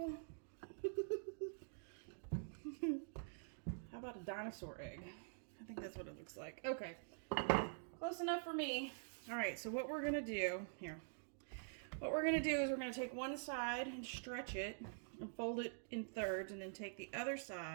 How about a dinosaur egg? I think that's what it looks like. Okay, close enough for me. All right, so what we're gonna do here, what we're gonna do is we're gonna take one side and stretch it and fold it in thirds, and then take the other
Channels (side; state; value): left; silent; digital silence